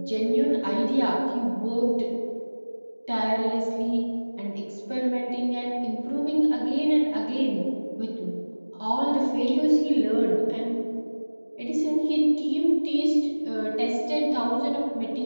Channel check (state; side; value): inverted; both; correlation -1.00